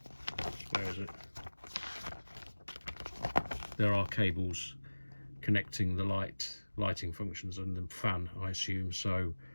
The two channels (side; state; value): both; inverted; correlation -1.00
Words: where is it, there are cables connecting the lighting functions and the fan, I assume. So